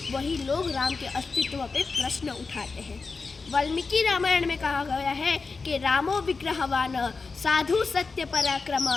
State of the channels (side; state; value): right; quieter; 4.4 dB